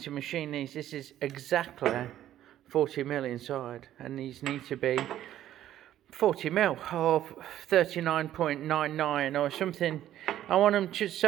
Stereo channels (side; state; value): left; quieter; 12.3 dB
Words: machine these. This is exactly 40mm inside, and these need to be 40mm or 39.99 or something. I want them just